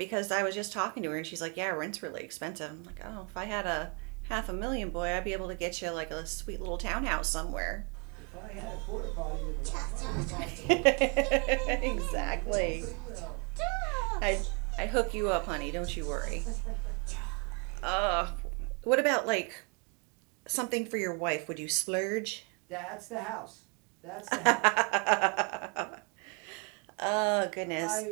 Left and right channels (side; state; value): left; quieter; 35.1 dB